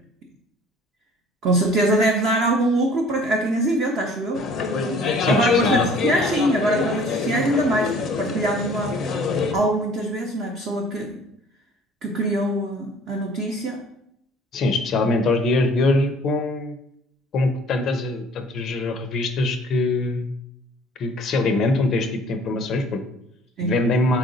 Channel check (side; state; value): both; normal; correlation 0.52